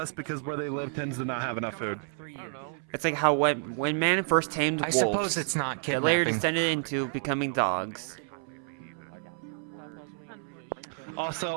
because where they live tends to not have enough food. It's like how when man first tamed I wolves, suppose it's not they later kidnapping. descended into becoming dogs.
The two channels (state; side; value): silent; left; 58 dB below the other